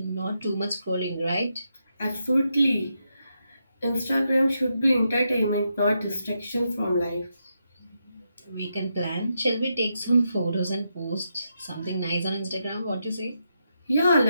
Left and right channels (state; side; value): inverted; both; correlation -0.83